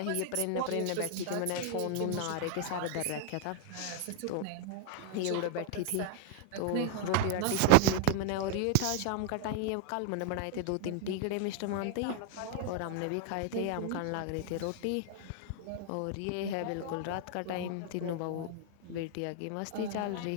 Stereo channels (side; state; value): both; different; correlation 0.00